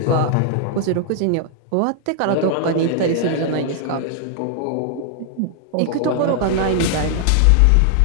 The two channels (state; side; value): different; both; correlation 0.00